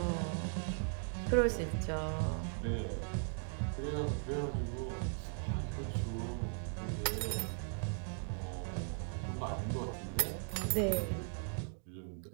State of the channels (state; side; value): silent; left; 52 dB below the other